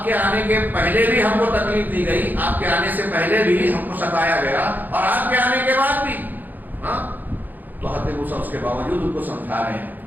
کے آنے کے پہلے بھی ہم کو تکلیف دی گئی, آپ کے آنے سے پہلے بھی ہم کو ستایا گیا, اور آپ کے آنے کے بعد بھی. ہاں تو حضرت موسیٰ اس کے باوجود ان کو سمجھا رہے ہیں.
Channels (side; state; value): left; late; 0.086 ms